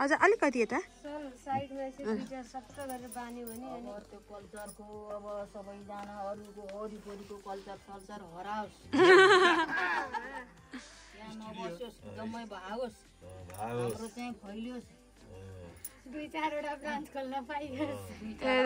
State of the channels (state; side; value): identical; both; correlation 1.00